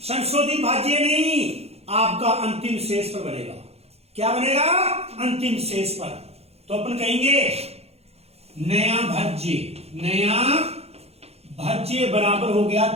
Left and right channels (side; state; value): left; late; 0.30 ms